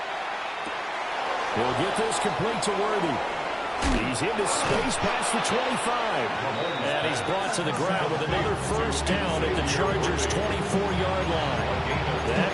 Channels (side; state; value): both; identical; correlation 1.00